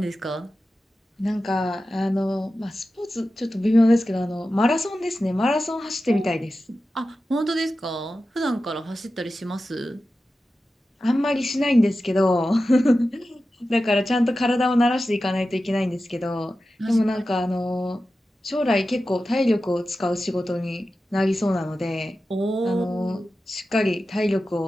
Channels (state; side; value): normal; both; correlation 0.93